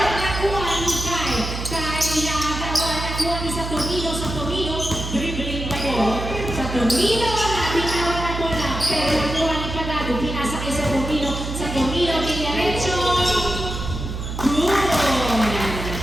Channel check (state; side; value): noise; right; hum, 6 dB below the sound